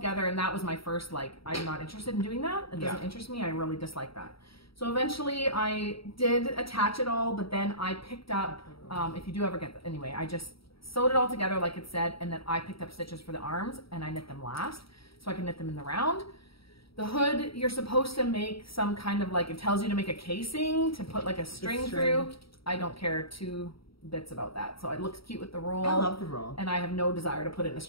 and that was my first like, I'm not interested in doing that. It doesn't interest me. I really dislike that. So eventually I did attach it all, but then I picked up, if you do ever get that, anyway, I just sewed it all together like it said, and then I picked up stitches for the arms, and I knit them last, so I can knit them in the round. The hood, you're supposed to make some kind of like, it tells you to make a casing to put like a string through. I don't care 2 bits about that. So it looks cute with the roll. I love the roll. And I have no desire to put in a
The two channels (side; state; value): right; late; 0.75 ms